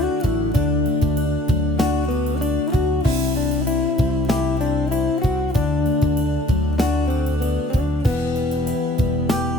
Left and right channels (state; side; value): normal; both; correlation 0.54